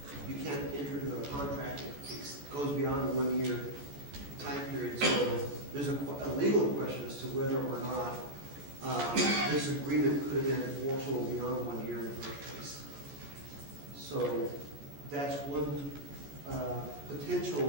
You can't enter into a contract that goes beyond a one-year time period, so there's a legal question as to whether or not this agreement could have been enforceable beyond 1 year in the first place. So that's one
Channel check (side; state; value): left; late; 14 ms